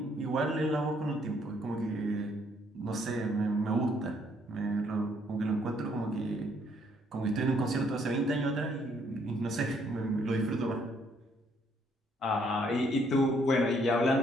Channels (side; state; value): both; normal; correlation 0.68